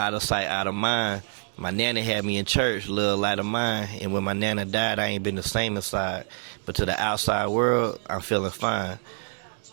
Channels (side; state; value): left; silent; 58 dB below the other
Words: of sight, out of mind. My nana had me in church, little light of mine. And when my nana died, I ain't been the same inside. But to the outside world, I'm feeling fine.